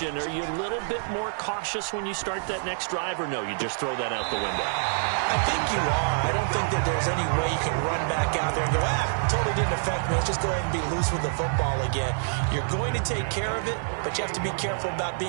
are you a little bit more cautious when you start that next drive, or no, you just throw that out the window? I think you are. I don't think that there's any way you can run back out there and go, totally didn't affect me. Let's just go ahead and be loose with the football again. You're going to take care of it, but you have to be careful about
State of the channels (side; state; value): left; silent; 56 dB below the other